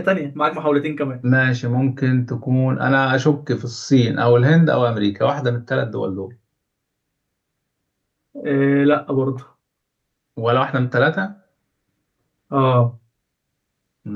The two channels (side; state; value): both; identical; correlation 1.00